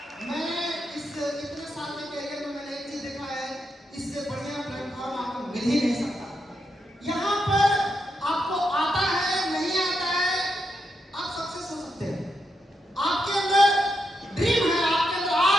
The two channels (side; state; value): both; normal; correlation 0.83